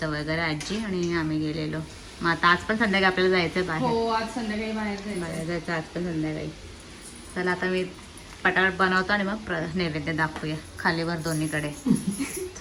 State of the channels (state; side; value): identical; both; correlation 1.00